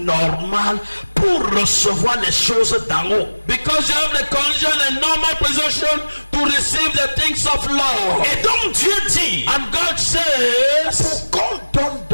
pour recevoir les choses d'en haut. Because you have the condition and normal position to receive the things of love. Et donc Dieu dit, And God says, qu'on donne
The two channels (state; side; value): inverted; both; correlation -1.00